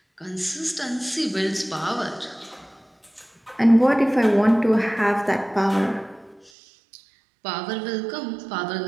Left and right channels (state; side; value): drops out; left; at 6.5 s